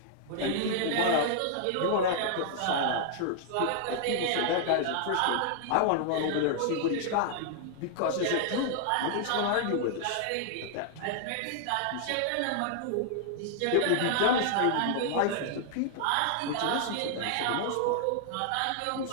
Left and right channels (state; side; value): different; both; correlation -0.01